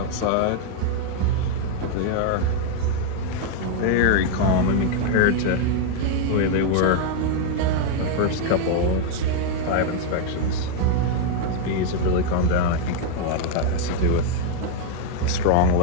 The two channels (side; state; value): both; different; correlation 0.00